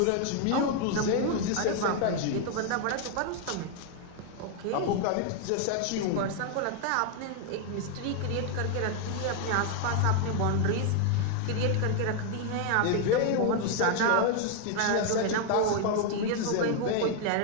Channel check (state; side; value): different; both; correlation 0.00